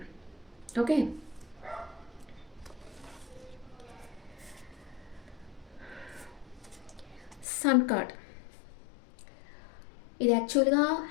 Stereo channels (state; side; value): drops out; right; at 7.5 s